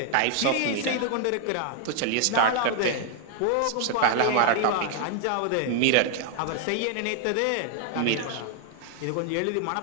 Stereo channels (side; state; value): both; different; correlation 0.00